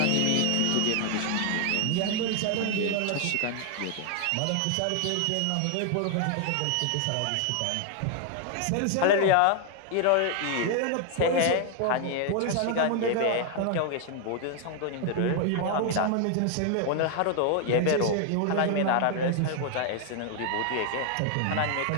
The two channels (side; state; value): both; different; correlation 0.00